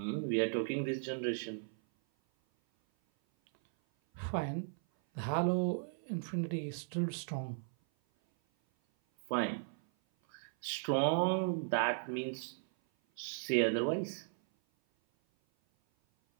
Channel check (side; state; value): left; silent; 54 dB below the other